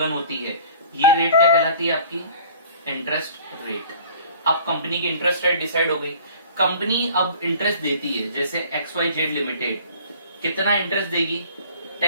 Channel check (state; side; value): inverted; both; correlation -0.48